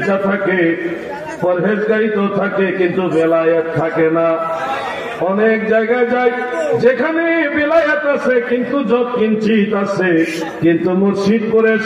থাকে, পরহেজগারি তো থাকে, কিন্তু বেলায়েত থাকে না। অনেক জায়গায় যাই যেখানে বেলায়েত আছে কিন্তু যত কিঞ্চিত আছে, কিন্তু মুর্শিদপুরে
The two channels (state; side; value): identical; both; correlation 1.00